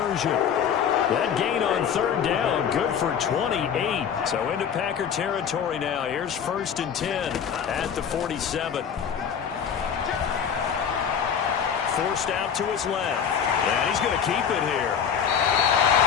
That gain on third down, good for 28. So into Packer territory now. Here's 1st and 10 at the 47. Forced out to his left. And he's going to keep it here.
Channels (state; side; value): quieter; right; 7.7 dB